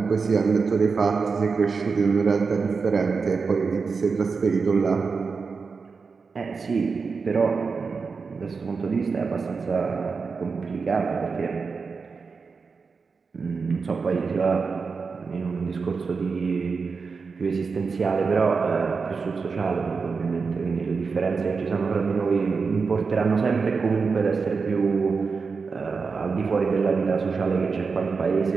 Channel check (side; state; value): left; quieter; 4.9 dB